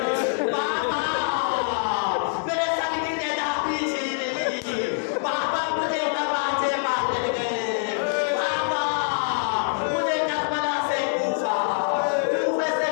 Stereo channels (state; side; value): silent; right; 62 dB below the other